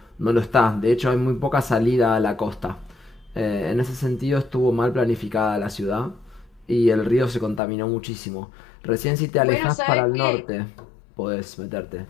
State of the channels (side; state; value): right; drops out; at 7.6 s